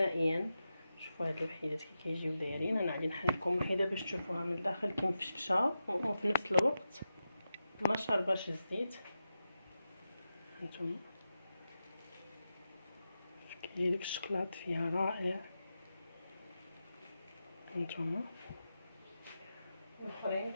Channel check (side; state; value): both; inverted; correlation -0.90